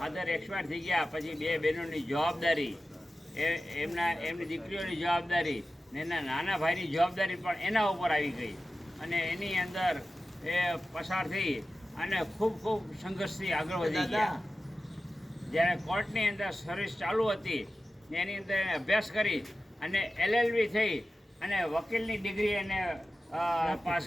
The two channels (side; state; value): both; normal; correlation 0.94